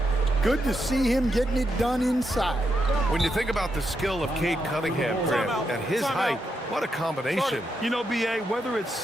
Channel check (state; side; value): normal; both; correlation 0.82